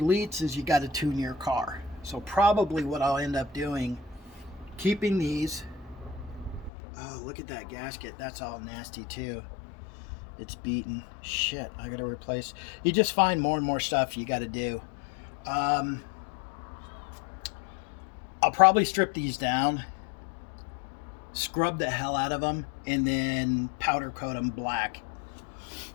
is you got to tune your car. So probably what I'll end up doing, keeping these. Oh, look at that gasket. That's all nasty too. It's beaten. Shit, I got to replace. You just find more and more stuff you got to do. I'll probably strip these down, scrub the hell out of them, and then powder coat them black.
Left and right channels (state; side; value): drops out; right; at 6.7 s